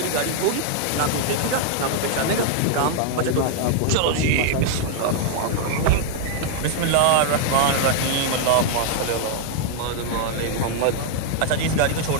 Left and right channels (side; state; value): both; different; correlation 0.00